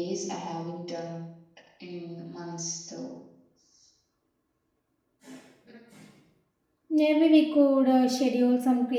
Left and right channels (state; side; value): identical; both; correlation 1.00